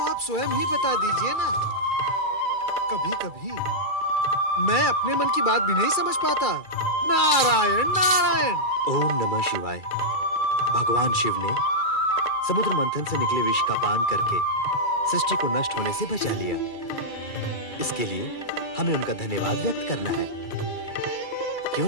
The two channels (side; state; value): right; late; 2.3 ms